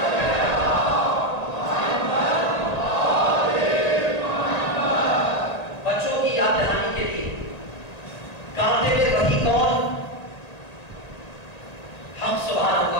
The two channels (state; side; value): late; right; 1.9 ms